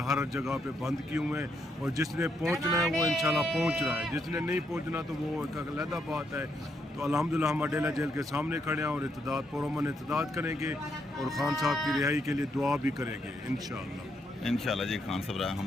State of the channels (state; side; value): normal; both; correlation 0.77